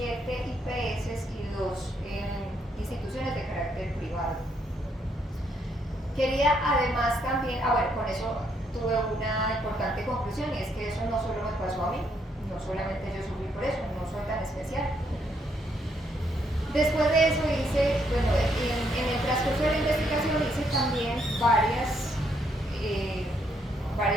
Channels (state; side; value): normal; both; correlation 0.73